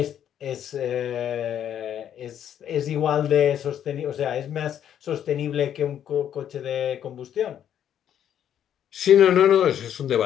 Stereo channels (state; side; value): quieter; right; 9.8 dB